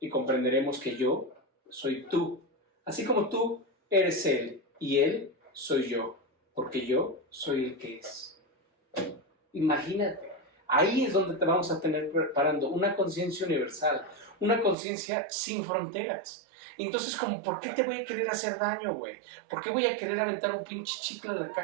y comprenderemos que yo soy tú, así como tú eres él y él soy yo, porque yo soy el que es. Imagínate, ahí es donde te vamos a tener preparando una conciencia universal, una conciencia sin fronteras. Entonces, como, ¿por qué te voy a querer hacer daño, güey? ¿Por qué voy a querer aventar un pinche chicle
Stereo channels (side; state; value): left; drops out; at 14.8 s